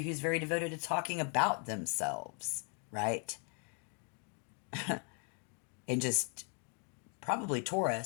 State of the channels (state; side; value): quieter; right; 39.3 dB